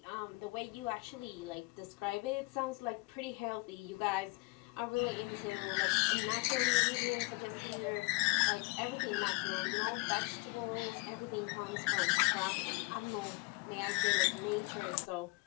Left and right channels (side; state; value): right; quieter; 28.0 dB